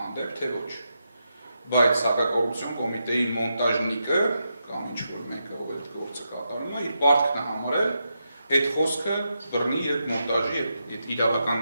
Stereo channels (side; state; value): both; inverted; correlation -0.85